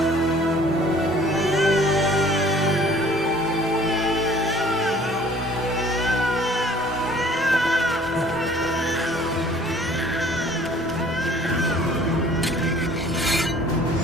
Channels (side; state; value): both; normal; correlation 0.53